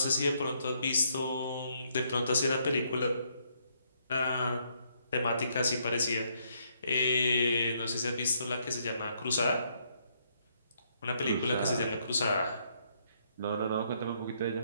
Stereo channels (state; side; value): inverted; both; correlation -0.72